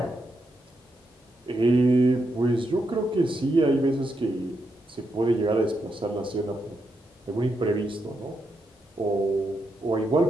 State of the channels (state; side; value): normal; both; correlation 0.83